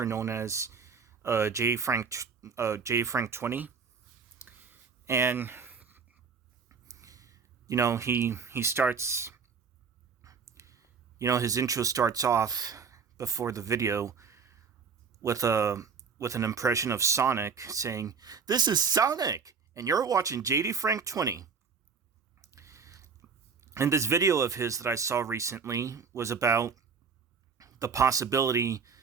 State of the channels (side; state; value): left; quieter; 5.6 dB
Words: known as J Frank 20, and he starts his intro starts off before the video with a with an impression of Sonic saying, "This is Sonic, and you're watching JD Frank 20." And this video of his that I saw recently was about the possibility